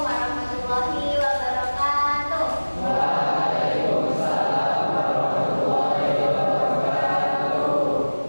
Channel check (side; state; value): both; inverted; correlation -1.00